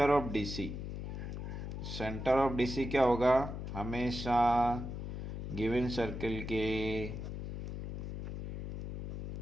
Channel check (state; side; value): noise; left; hum, 6 dB below the sound